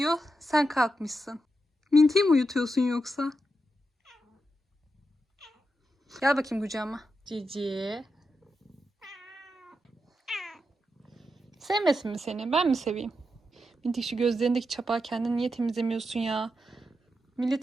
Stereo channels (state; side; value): normal; both; correlation 0.86